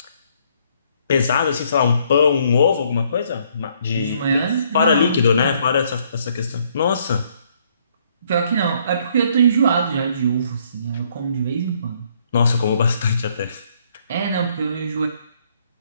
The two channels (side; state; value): both; inverted; correlation -0.67